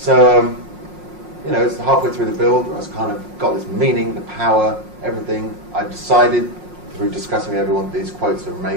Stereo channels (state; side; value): late; left; 5.5 ms